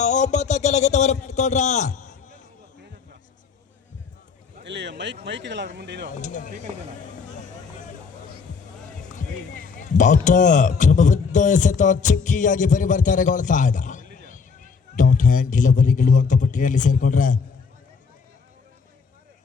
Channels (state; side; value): quieter; right; 5.4 dB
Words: ಲಗೇಟವನ್ನು ಪಡ್ಕೊಂಡ್ರ ಕ್ರಮಬದ್ಧ ಎಸೆತ ಚುಕ್ಕಿಯಾಗಿ ಪರಿವರ್ತನೆಗೊಳ್ತಾ ಇದೆ. ಡಾಟ್ ಹ್ಯಾಂಡ್ ಡೆಲಿವರಿಗಳು ಅಂಕಪಟ್ಟಿಯಲ್ಲಿ ಸೇರ್ಕೊಂಡ್ರ